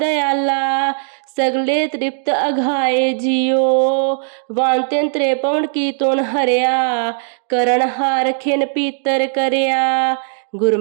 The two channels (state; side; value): silent; left; digital silence